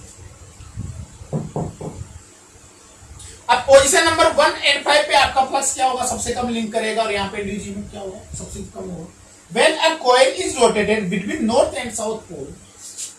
अब पोजीशन नंबर 1 एंड 5 पे आपका फ्लक्स क्या होगा, सबसे कम लिंक करेगा, और यहाँ पे डी में क्या होगा, सबसे कम होगा। When a coil is rotated between north and south pole,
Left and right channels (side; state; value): both; identical; correlation 1.00